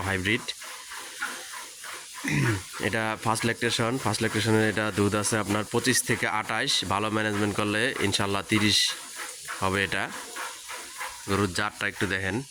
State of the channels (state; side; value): identical; both; correlation 1.00